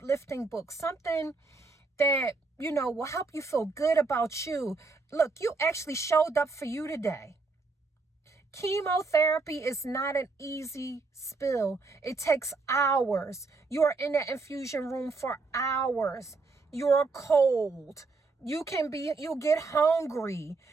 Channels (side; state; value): left; quieter; 3.9 dB